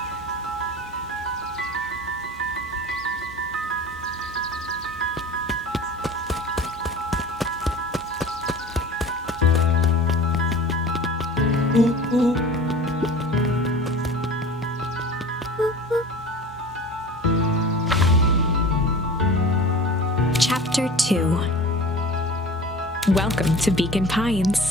Chapter 2. Welcome to Beacon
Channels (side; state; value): both; normal; correlation 0.38